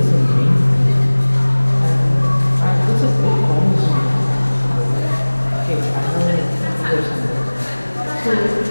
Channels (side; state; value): both; inverted; correlation -1.00